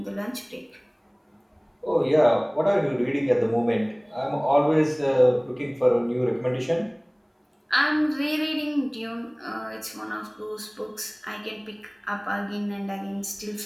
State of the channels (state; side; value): identical; both; correlation 1.00